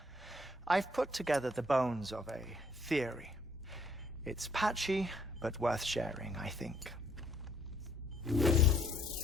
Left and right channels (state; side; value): normal; both; correlation 0.66